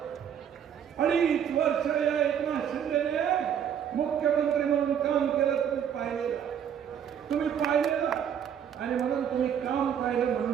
वर्ष या एकनाथ शिंदेने मुख्यमंत्री म्हणून काम केलं. तुम्ही पाहिलेलं आणि म्हणून तुम्ही काम पाहिलं.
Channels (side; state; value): left; quieter; 8.7 dB